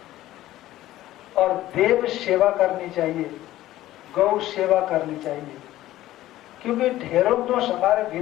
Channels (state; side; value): quieter; right; 14.9 dB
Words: और देव सेवा करनी चाहिए, गौ सेवा करनी चाहिए, क्योंकि ढेरों दोष हमारे